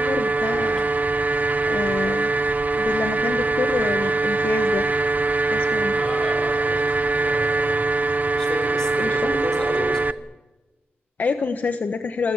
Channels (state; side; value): normal; both; correlation 0.84